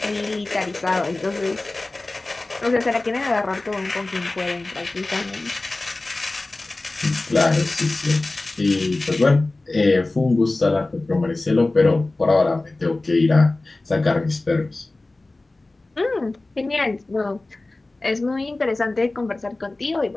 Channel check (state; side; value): quieter; right; 3.0 dB